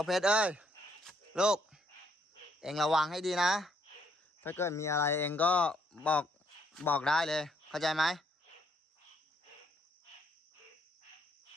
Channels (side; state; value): both; normal; correlation 0.70